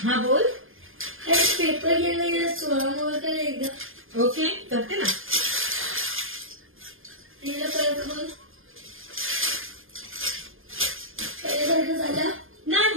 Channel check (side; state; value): left; late; 0.59 ms